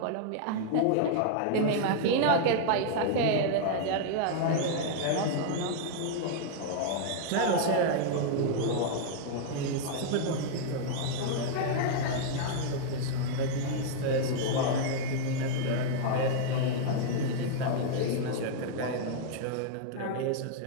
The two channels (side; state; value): both; different; correlation -0.01